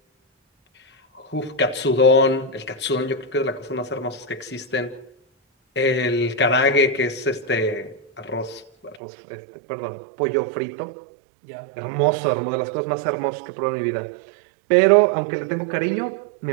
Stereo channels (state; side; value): drops out; left; at 9.0 s